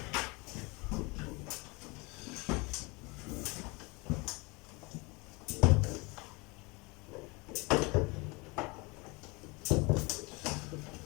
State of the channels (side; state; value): right; quieter; 26.8 dB